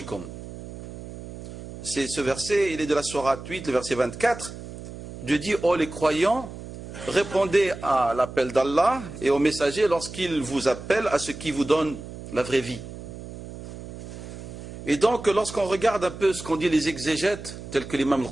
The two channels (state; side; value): noise; right; hum, 12 dB below the sound